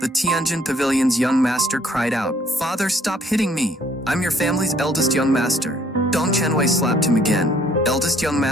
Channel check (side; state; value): both; normal; correlation 0.63